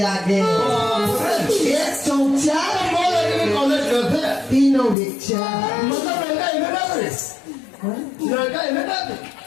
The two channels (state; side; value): drops out; right; at 5.0 s